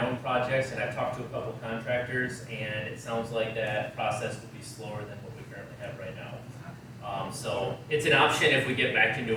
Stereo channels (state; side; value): identical; both; correlation 1.00